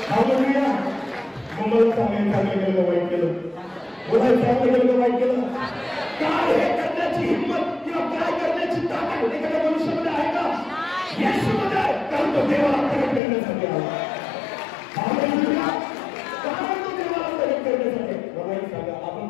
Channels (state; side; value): drops out; right; at 13.2 s